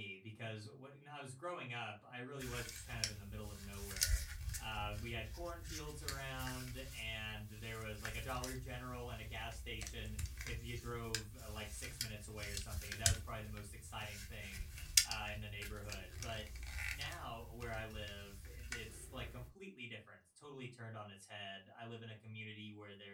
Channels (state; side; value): identical; both; correlation 1.00